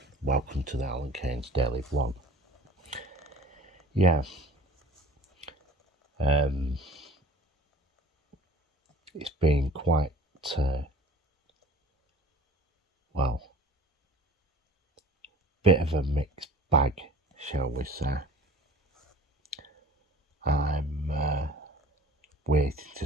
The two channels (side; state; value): both; normal; correlation 0.46